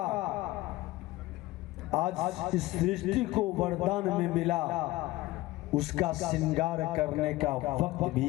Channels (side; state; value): right; quieter; 18.2 dB